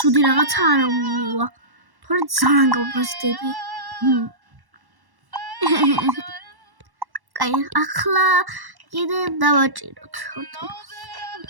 რაღაცა არ მივა. თორე ძალიან გავბრაზდები. კაი, ახლა კიდე დავაჭიროთ.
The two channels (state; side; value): late; left; 1.1 ms